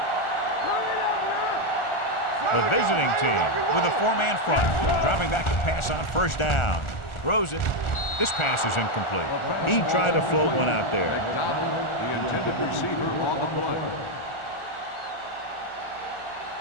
The visiting team with a 4-man front. Dropping back to pass on first down. Throws it. This pass is incomplete. He tried to float one out there. McDonald, the intended receiver on the play.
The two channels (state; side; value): late; right; 1.4 ms